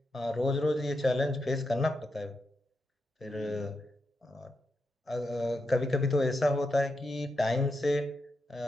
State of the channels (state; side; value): normal; both; correlation 0.86